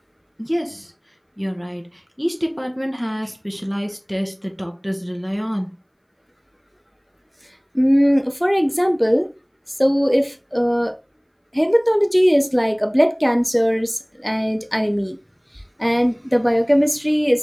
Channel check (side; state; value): both; identical; correlation 1.00